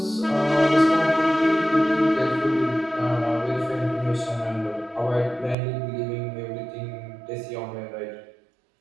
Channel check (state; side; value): drops out; left; at 5.6 s